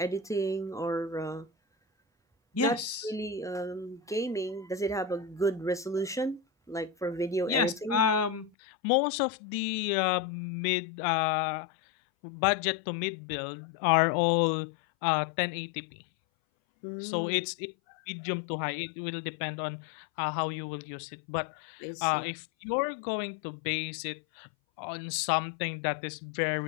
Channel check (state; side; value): drops out; right; at 8.5 s